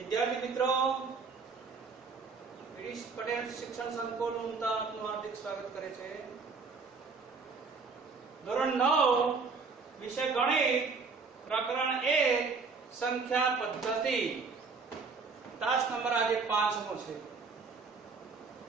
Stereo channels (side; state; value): left; quieter; 4.7 dB